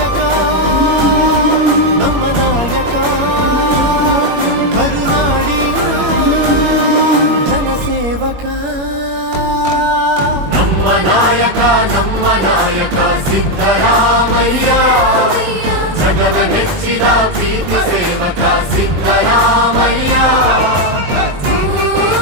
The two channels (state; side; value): late; left; 21 ms